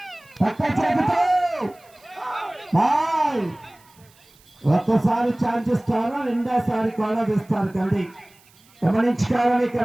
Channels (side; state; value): right; noise; hiss, 29 dB below the sound